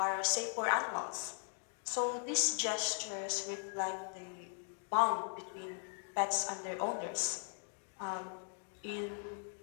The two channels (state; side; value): silent; right; 52 dB below the other